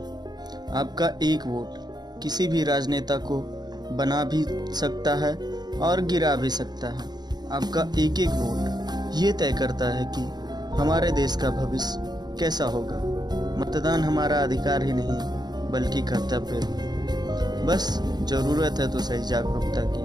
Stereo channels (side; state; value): left; late; 0.20 ms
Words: आपका एक वोट किसी भी राजनेता को बना भी सकता है और गिरा भी सकता है। आपका एक एक वोट ये तय करता है कि हमारे देश का भविष्य कैसा होगा। मतदान हमारा अधिकार ही नहीं बल्कि कर्तव्य है। बस ज़रूरत है तो सही जागरूकता